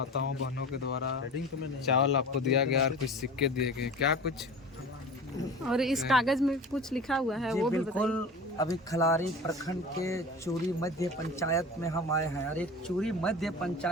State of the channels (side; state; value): both; normal; correlation 0.35